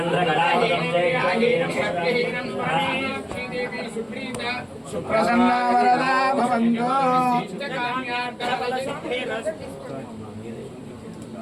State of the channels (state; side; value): identical; both; correlation 1.00